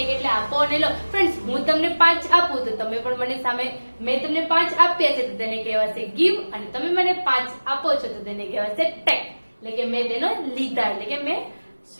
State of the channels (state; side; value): inverted; both; correlation -1.00